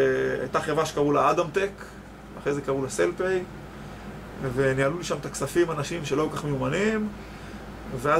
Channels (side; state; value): both; identical; correlation 1.00